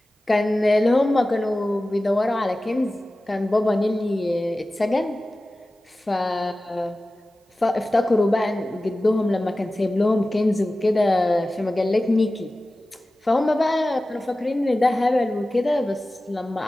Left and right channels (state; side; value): normal; both; correlation 0.96